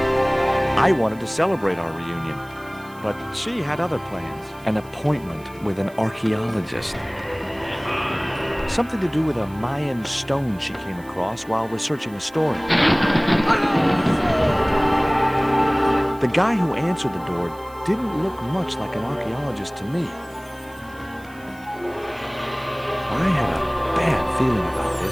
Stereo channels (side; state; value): right; noise; hiss, 25 dB below the sound